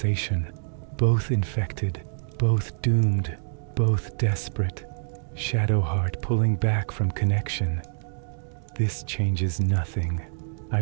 both infected, both doomed, both desperate, Shadowheart pulling back from connection. This changes nothing. I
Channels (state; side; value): silent; left; digital silence